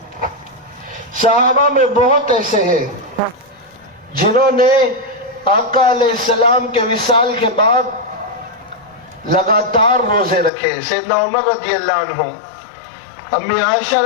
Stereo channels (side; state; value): right; drops out; at 10.5 s